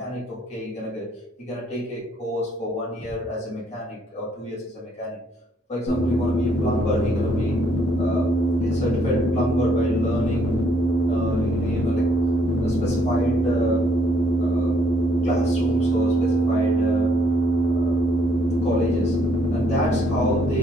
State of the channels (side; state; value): both; normal; correlation 0.68